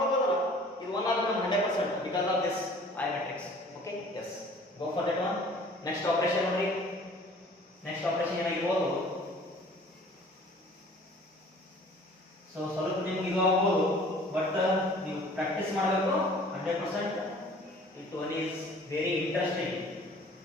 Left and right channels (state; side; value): normal; both; correlation 0.50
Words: ಇದು 1 ಆಗಬೇಕು 100% because of this I matrix. Okay, yes, go for that one. Next operation ನೋಡ್ರಿ, ನೆಕ್ಸ್ಟ್ ಆಪರೇಷನ್ ಏನಾಗಿರ್ಬೋದು, ಸೊ ಸ್ವಲ್ಪ ನಿಮ್ಗೆ ಇದು ಆಗ್ಬೋದು, ಬಟ್ ನೀವು ಪ್ರಾಕ್ಟೀಸ್ ಮಾಡಬೇಕು 100%. It one is very interesting